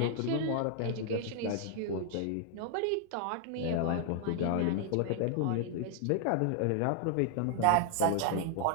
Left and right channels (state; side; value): different; both; correlation 0.00